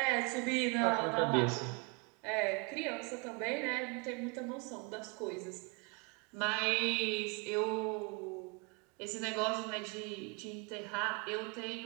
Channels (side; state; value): left; quieter; 30.6 dB